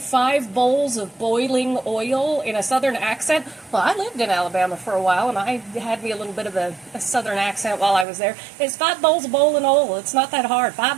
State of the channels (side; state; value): left; drops out; at 8.1 s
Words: bowls of boiling oil in a southern accent. Well, I lived in Alabama for a while, and I had me a little bit of a southern accent while I was there. It's 5 bowls of boiling oil. It's not that hard.